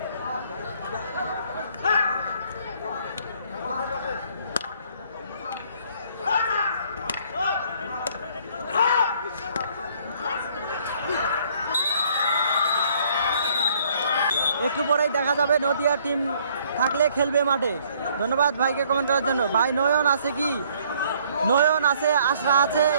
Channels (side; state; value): both; inverted; correlation -0.62